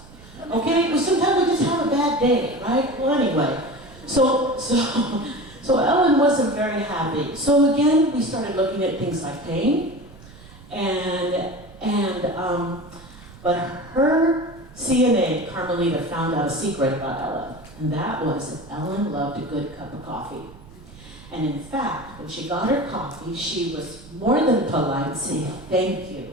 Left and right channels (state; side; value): noise; right; rumble, 20 dB below the sound